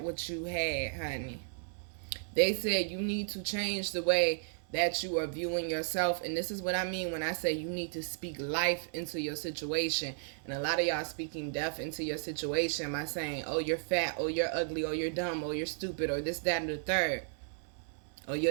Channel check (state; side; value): silent; left; 55 dB below the other